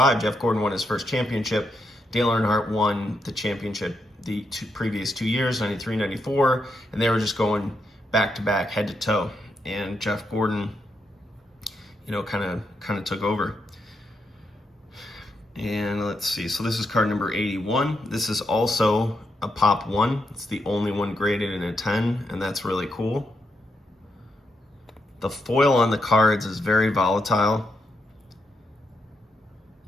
Jeff Gordon won his first championship. Dale Earnhardt won the championship the previous 2 years, 93, 94, and they were just going back-to-back, head-to-toe. And Jeff Gordon, kind of took over. And let's see. So this is card number 81. This is also a Pop 1. It's the only one graded in a 10, and that's really cool. The foil on the cards is very volatile.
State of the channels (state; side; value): normal; both; correlation 0.81